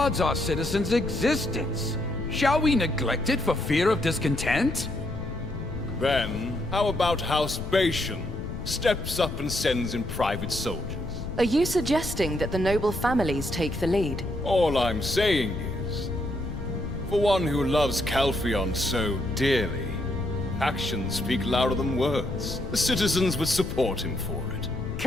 our citizens' existence. Shall we neglect it for fear of discontent? Then, how about House Bation steps up and sends in private soldiers? Are you suggesting that the noble families take the lead? All I'm saying is, for one who loves Calphion so dearly, actions speak louder than words. The citizens would support him for it.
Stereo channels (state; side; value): noise; left; rumble, 7 dB below the sound